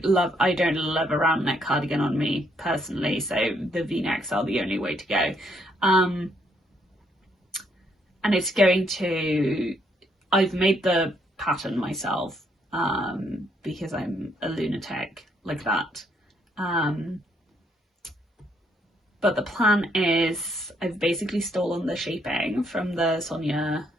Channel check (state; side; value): normal; both; correlation 0.72